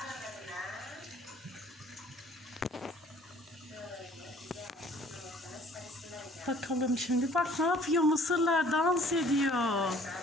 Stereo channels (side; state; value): both; normal; correlation 0.55